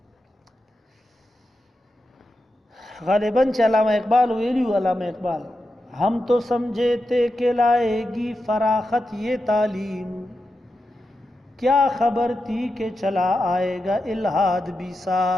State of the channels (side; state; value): both; normal; correlation 0.89